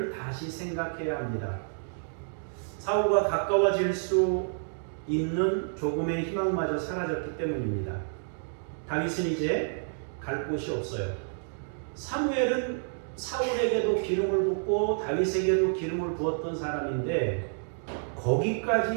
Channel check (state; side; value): silent; left; digital silence